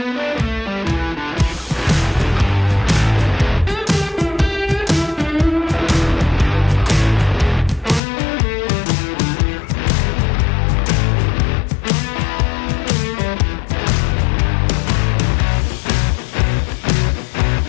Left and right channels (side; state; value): right; drops out; at 8.0 s